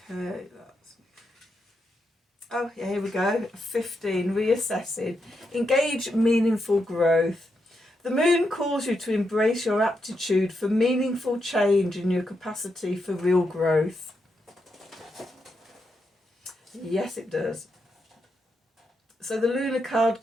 that's... Oh, yeah, here we go. 15. Reassessing. Engage meaningful growth. The moon calls you to embrace your aptitude for meaningful change and your capacity for real growth. Yes, it does. So the lunar card,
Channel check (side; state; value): both; normal; correlation 0.83